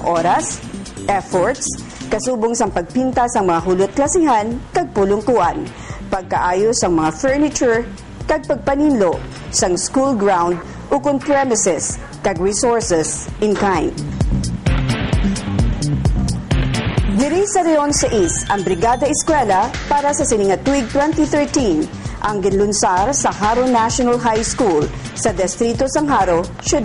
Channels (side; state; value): both; identical; correlation 1.00